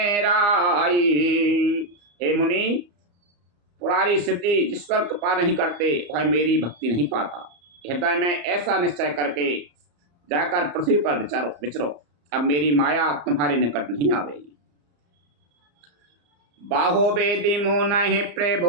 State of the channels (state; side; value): late; left; 34 ms